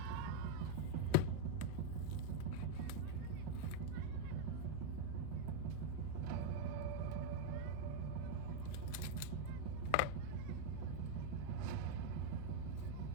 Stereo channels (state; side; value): different; both; correlation 0.01